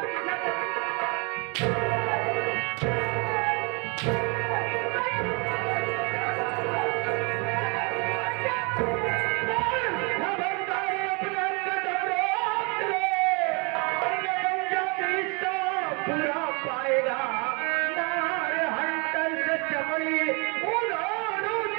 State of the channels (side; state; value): left; quieter; 31.6 dB